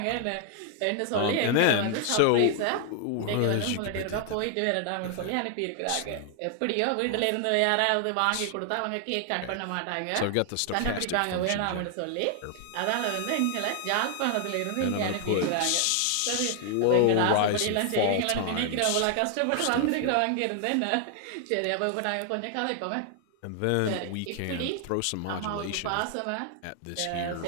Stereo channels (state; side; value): different; both; correlation 0.00